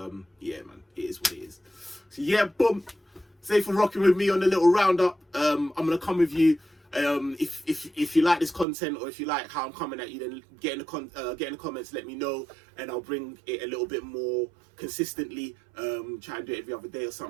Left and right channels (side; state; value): left; drops out; at 8.7 s